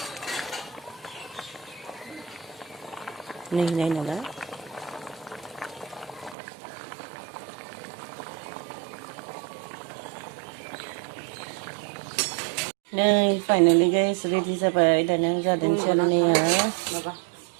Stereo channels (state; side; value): drops out; left; at 6.4 s